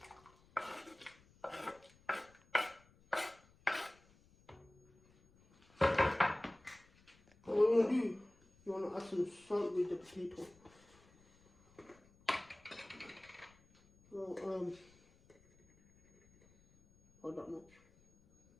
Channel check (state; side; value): noise; left; rumble, 29 dB below the sound